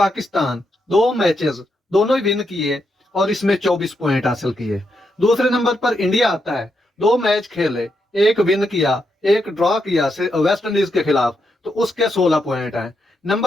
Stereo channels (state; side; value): normal; both; correlation 0.82